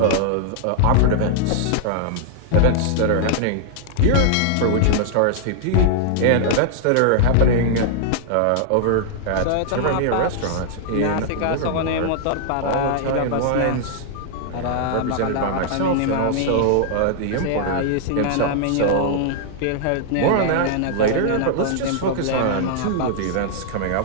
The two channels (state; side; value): different; both; correlation -0.01